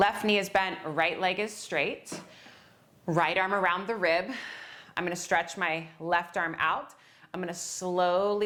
knee is bent, right leg is straight. Right arm around the rib. I'm gonna stretch my left arm out. I'm gonna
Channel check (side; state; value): both; identical; correlation 1.00